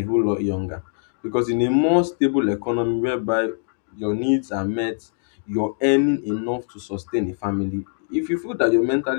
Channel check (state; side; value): silent; right; digital silence